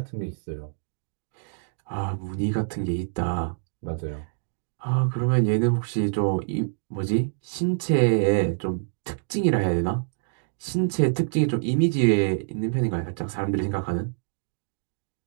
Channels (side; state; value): left; silent; digital silence